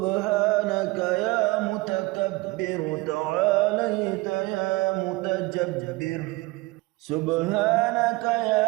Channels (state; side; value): quieter; left; 22.4 dB